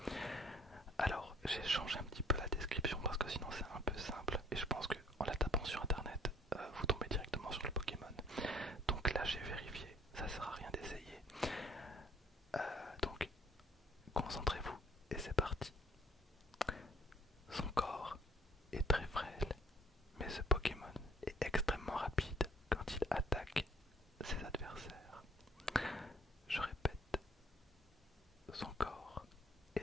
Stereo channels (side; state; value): both; normal; correlation 0.58